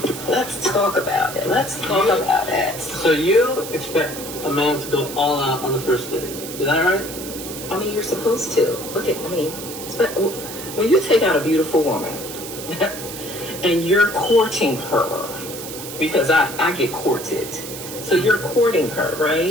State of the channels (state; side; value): noise; right; hiss, 10 dB below the sound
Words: let's talk about it. Let's talk about it. So you expect a man to go all out on the first date? Is that right? I mean, you're supposed to. When you take out a beautiful woman and you're courting her, because I get courted. So you're courting her,